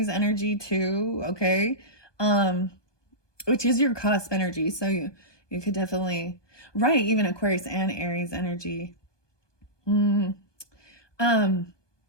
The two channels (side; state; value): right; late; 1.2 ms